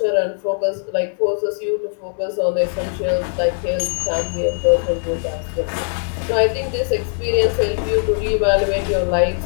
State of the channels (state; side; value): silent; right; 59 dB below the other